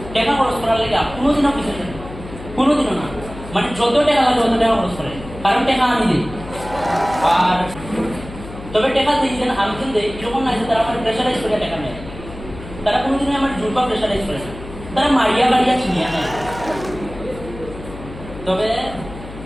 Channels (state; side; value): noise; left; hum, 14 dB below the sound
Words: টাকা খরচ করার লেগে কোনোদিনও কিছু কোনোদিনও না, মানে যত টাকা লাগে তত টাকা খরচ করে, কারণ টাকা আমি দিই। আর তবে টাকা দিয়েছেন আমি কিন্তু দেই এরকম না যে তারা আমার প্রেশারাইজ করে টাকা নেয়, তারা কোনোদিনই আমার জোর বা প্রেশারাইজ করে না, তারা মারিয়া বাড়িয়া ছিনিয়ে নেয়। তবে